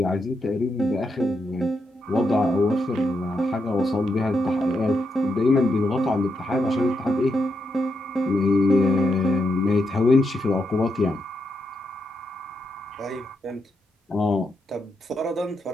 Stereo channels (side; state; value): both; normal; correlation 0.82